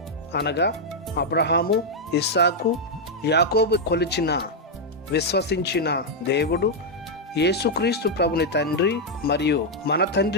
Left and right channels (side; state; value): both; normal; correlation -0.02